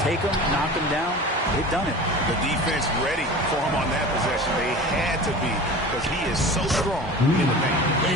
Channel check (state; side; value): normal; both; correlation 0.36